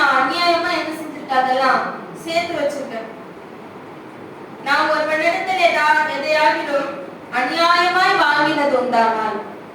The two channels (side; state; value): both; identical; correlation 1.00